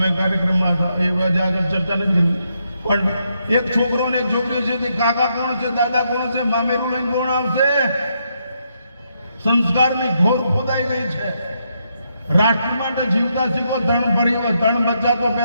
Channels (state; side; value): inverted; both; correlation -0.78